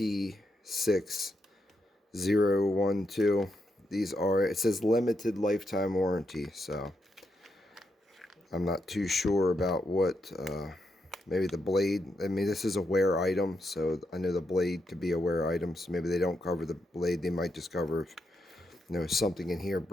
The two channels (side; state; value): both; normal; correlation 0.82